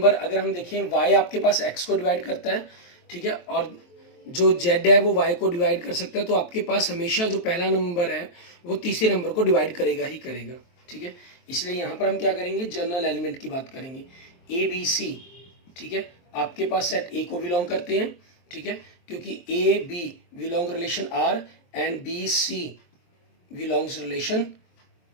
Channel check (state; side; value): late; right; 23 ms